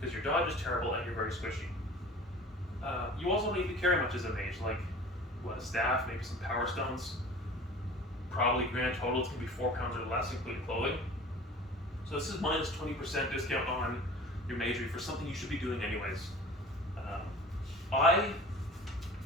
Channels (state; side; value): normal; both; correlation 0.41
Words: your dodge is terrible and you're very squishy. You also don't need to carry much as a mage, like a staff, maybe some power stones. Probably grand total it's going to be 4 pounds or less, including clothing. So this is minus 20% discount on your Magery for something you should be doing anyways. I